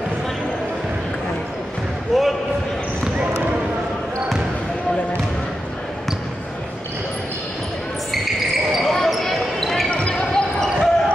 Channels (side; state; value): both; normal; correlation 0.88